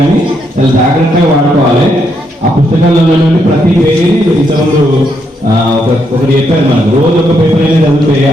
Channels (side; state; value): both; normal; correlation 0.77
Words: చాలా జాగ్రత్తగా వాడుకోవాలి. ఆ పుస్తకాలలో ప్రతి పేజీని ఇంతకుముందు ఒకటి చెప్పారు, మనకు రోజు ఒక పేపర్ అనేది చదివితే